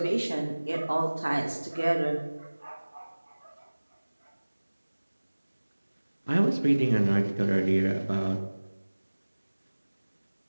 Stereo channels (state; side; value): inverted; both; correlation -1.00